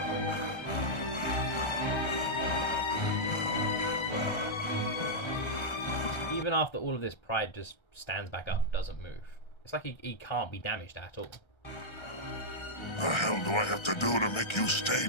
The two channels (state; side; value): late; right; 1.3 ms